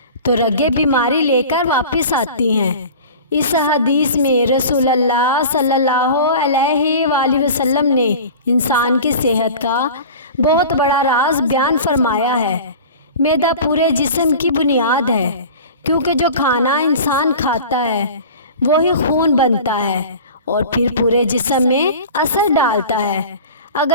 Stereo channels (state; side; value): inverted; both; correlation -0.38